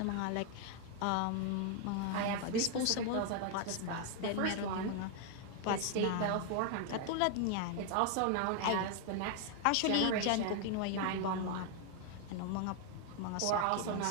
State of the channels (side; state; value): both; different; correlation 0.00